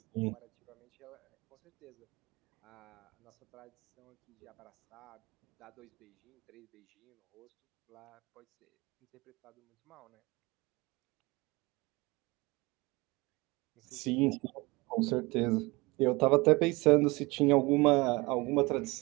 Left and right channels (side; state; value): left; quieter; 23.9 dB